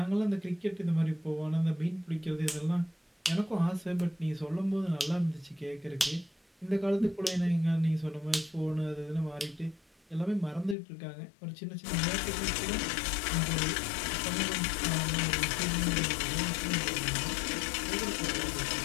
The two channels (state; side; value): drops out; right; at 10.8 s